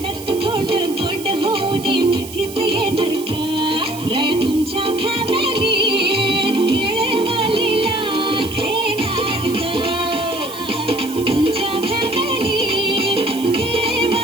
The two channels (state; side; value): noise; right; hiss, 14 dB below the sound